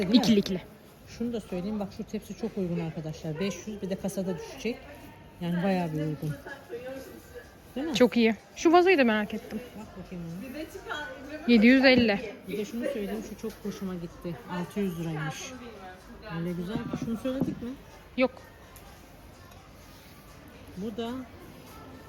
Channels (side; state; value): both; identical; correlation 1.00